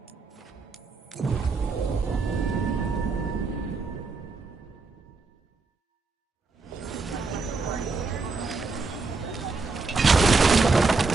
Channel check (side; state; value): left; quieter; 4.1 dB